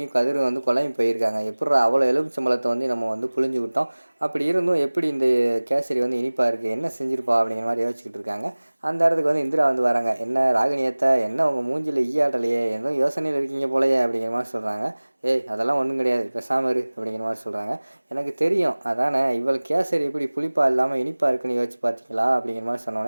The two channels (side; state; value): both; inverted; correlation -1.00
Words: கதிரும் வந்து குழம்பி போயிருக்காங்க. எப்புட்றா அவ்வளோ எலுமிச்சம்பழத்தை வந்து நம்ம வந்து புழிஞ்சு விட்டோம். அப்படி இருந்தும் எப்படி இந்த கேசரி வந்து இனிப்பாக இருக்குது, என்ன செஞ்சிருப்பா அப்படிங்கிற மாதிரி யோசிச்சுக்கிட்டு இருக்காங்க. அந்த இடத்துக்கு வந்து இந்திரா வந்து வராங்க. என்ன ராகினியத்தை, என்ன உங்கள் மூஞ்சில் ஈயாட்டலையே, எதுவும் யோசனையில் இருக்கீங்க போலையே அப்படிங்கிற மாதிரி சொல்கிறாங்க. ஏய் அதெல்லாம் ஒன்றும் கிடையாது, பேசாம இரு அப்படிங்கிற மாதிரி சொல்கிறாங்க. எனக்கு தெரியும் அதானே, இவள் கேசரி எப்படி புளிப்பாக இல்லாமல் இனிப்பாக இருக்குன்னு யோசிச்சு பார்த்தீங்களா அப்படிங்கிற மாதிரி